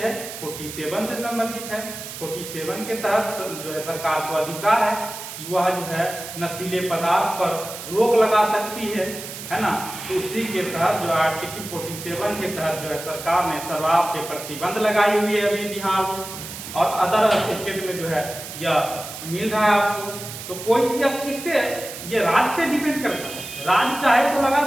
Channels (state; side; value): noise; right; hiss, 10 dB below the sound